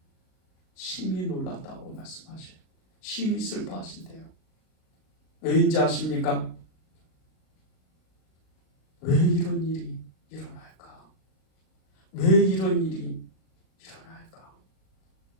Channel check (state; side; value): late; right; 38 ms